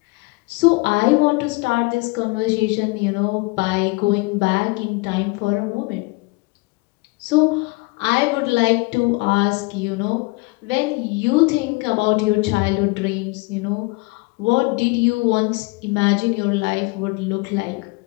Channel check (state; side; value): quieter; right; 25.9 dB